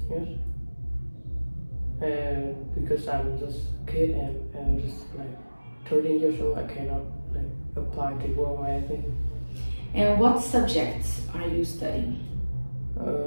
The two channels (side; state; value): both; inverted; correlation -1.00